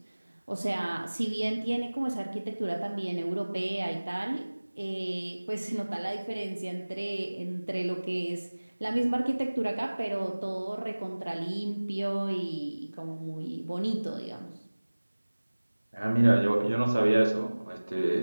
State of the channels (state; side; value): inverted; both; correlation -1.00